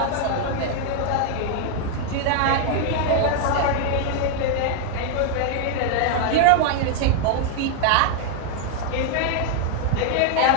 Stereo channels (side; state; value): both; different; correlation 0.00